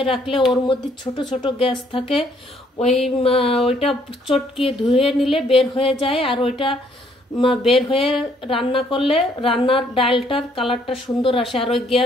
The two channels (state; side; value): normal; both; correlation 0.66